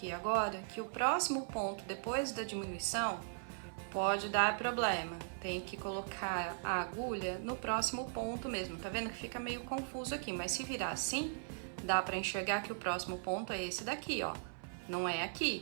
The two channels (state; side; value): silent; left; 52 dB below the other